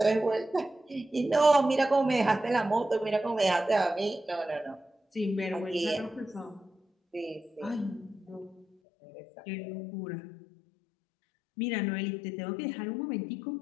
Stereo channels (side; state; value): right; drops out; at 8.7 s